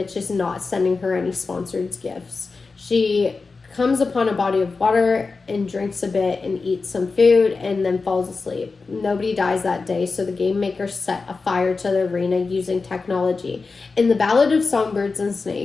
is not sending her any sponsored gifts. She comes upon a body of water and drinks a bit and eats some food and then falls asleep. Nobody dies that day, so the game makers set a fire to the arena using technology. In the Ballad of Songbirds and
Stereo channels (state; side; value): quieter; right; 4.2 dB